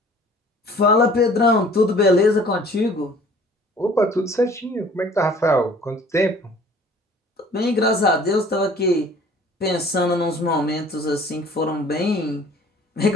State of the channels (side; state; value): both; normal; correlation 0.51